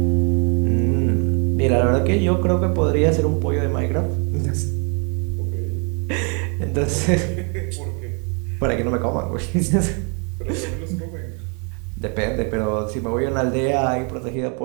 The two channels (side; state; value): left; quieter; 36.6 dB